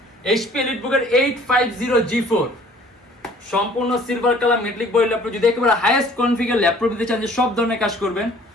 HP EliteBook 850G4, সম্পূর্ণ silver colour metallic body laptop. যদি একেবারে হাইয়েস্ট কনফিগার ল্যাপটপ দিতে চান যে সব ধরনের কাজ করবেন,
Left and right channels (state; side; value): normal; both; correlation 0.54